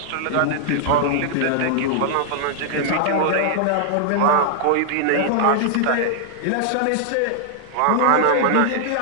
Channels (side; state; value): both; different; correlation -0.01